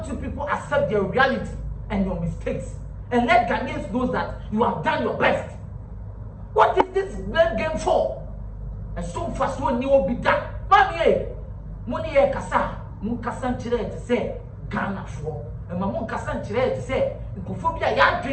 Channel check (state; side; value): identical; both; correlation 1.00